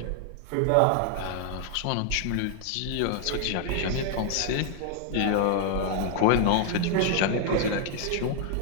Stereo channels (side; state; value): both; different; correlation 0.00